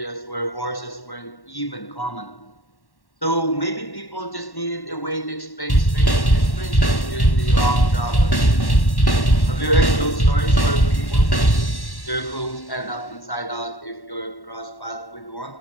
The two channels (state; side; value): late; right; 1.1 ms